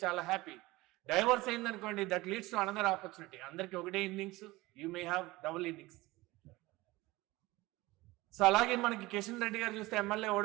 చాలా హ్యాపీ. డైవర్స్ అయింది అనుకోండి, that leads to another opportunity. అందరికి ఒకటే innings, you may have double innings. So అలాగే మనకి కిషన్ రెడ్డి గారు చూస్తే ఎమ్మెల్యే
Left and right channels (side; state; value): left; quieter; 20.2 dB